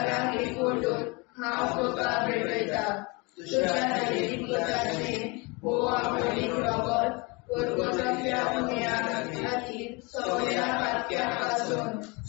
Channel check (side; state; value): right; quieter; 28.0 dB